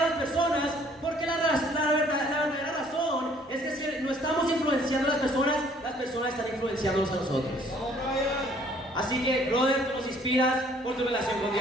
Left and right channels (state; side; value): normal; both; correlation 0.59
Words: las personas, porque la verdadera razón es que si no estamos influenciando a las personas están influenciándonos a nosotros. Así que, brother, tú nos inspiras por tu relación con